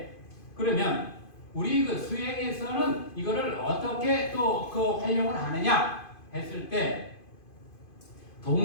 그러면 우리 그 수행에서는 이거를 어떻게 또 그 활용을 하느냐 했을 때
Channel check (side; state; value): right; late; 2.5 ms